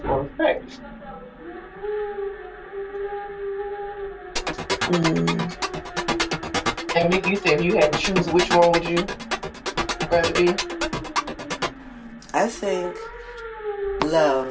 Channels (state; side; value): identical; both; correlation 1.00